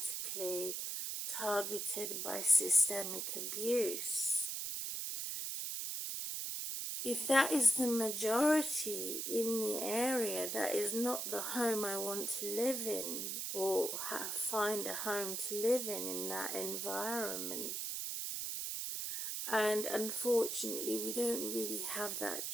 targeted by systemic abuse. If that is the majority in the area, that is not the home I want to live in or find a home to live in that environment. And unfortunately, we don't really have that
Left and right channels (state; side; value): noise; right; hiss, 3 dB below the sound